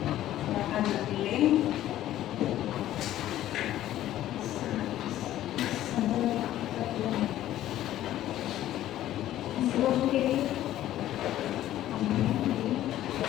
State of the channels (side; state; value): right; quieter; 13.3 dB